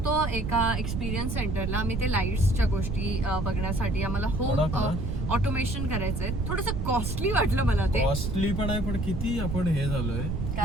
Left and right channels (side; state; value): right; noise; rumble, 2 dB below the sound